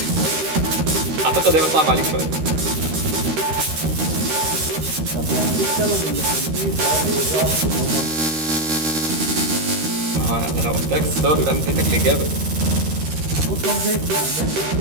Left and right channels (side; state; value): left; late; 13 ms